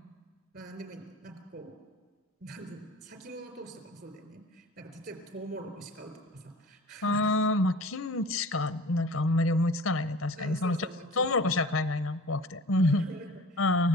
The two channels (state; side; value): normal; both; correlation 0.42